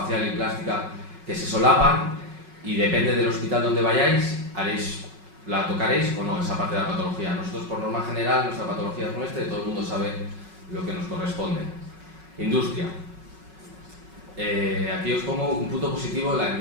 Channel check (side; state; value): left; late; 5.4 ms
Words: y plástica que se solapan y depende del hospital donde vayáis, la tocaréis o no, esa parte de la patología. Nosotros por norma general, nuestra patología es nuestra y todo el mundo sabe lo que nos corresponde. Industria. Aquí os pongo un punto positivo en la